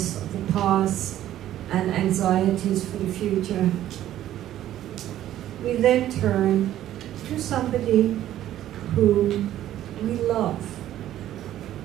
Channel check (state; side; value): quieter; left; 12.6 dB